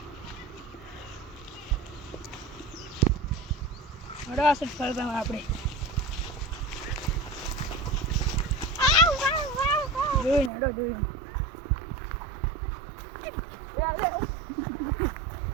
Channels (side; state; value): left; drops out; at 10.5 s